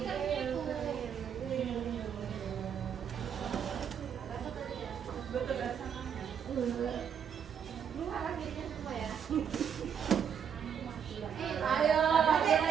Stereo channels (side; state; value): left; quieter; 7.9 dB